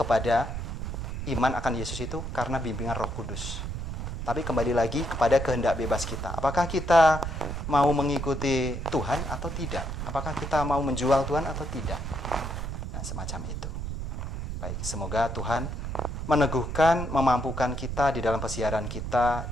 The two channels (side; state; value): right; noise; rumble, 5 dB below the sound